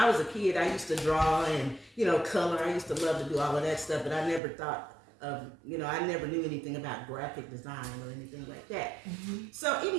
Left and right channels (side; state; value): left; drops out; at 4.4 s